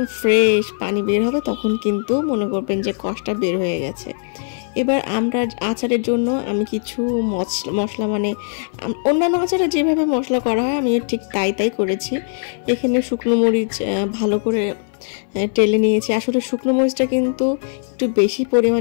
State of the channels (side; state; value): right; silent; 59 dB below the other